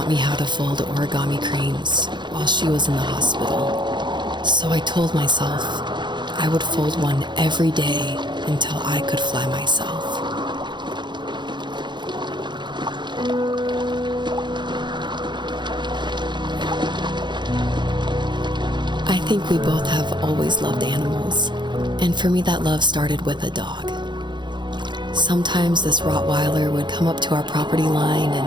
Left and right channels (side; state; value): left; late; 0.22 ms